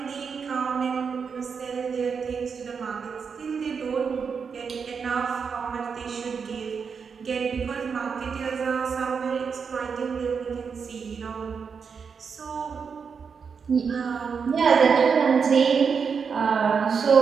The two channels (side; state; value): left; quieter; 6.0 dB